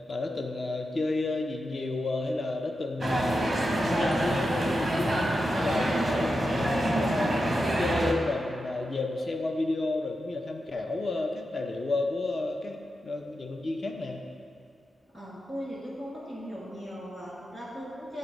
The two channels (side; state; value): both; normal; correlation 0.89